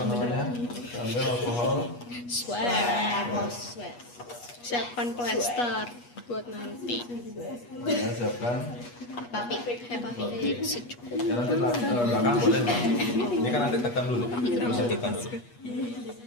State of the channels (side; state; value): right; late; 8.3 ms